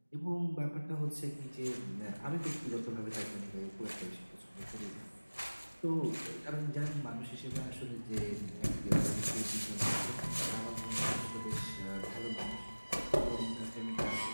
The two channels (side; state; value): both; inverted; correlation -1.00